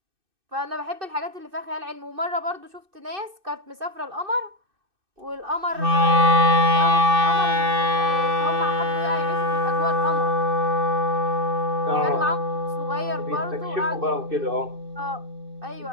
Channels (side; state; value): left; late; 2.6 ms